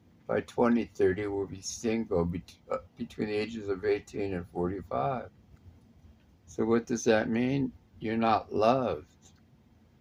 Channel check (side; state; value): both; identical; correlation 1.00